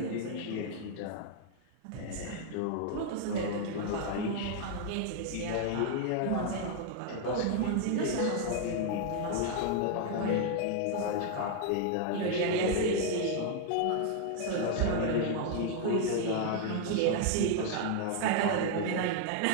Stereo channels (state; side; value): different; both; correlation 0.00